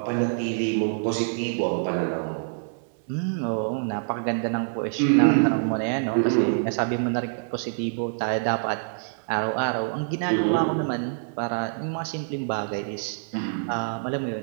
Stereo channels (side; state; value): left; silent; digital silence